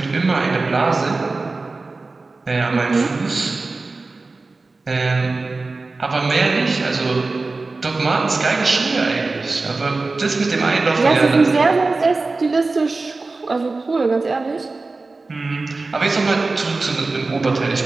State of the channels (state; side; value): quieter; left; 3.6 dB